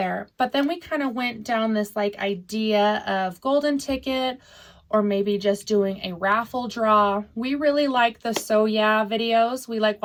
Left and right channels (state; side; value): identical; both; correlation 1.00